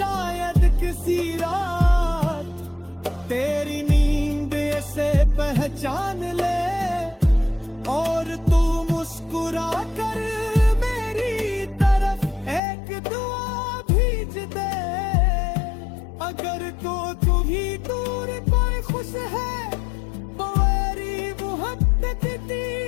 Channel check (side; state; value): right; drops out; at 12.6 s